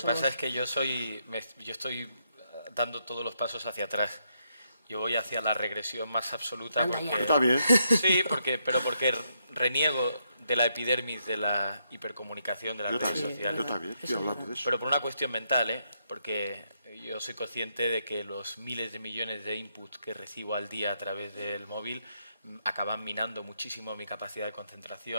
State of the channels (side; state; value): both; inverted; correlation -0.78